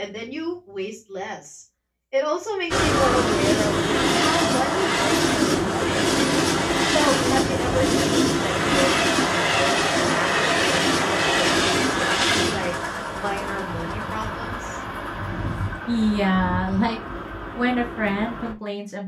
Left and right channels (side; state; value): both; identical; correlation 1.00